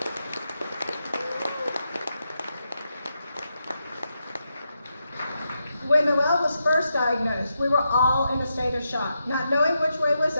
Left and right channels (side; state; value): both; inverted; correlation -0.85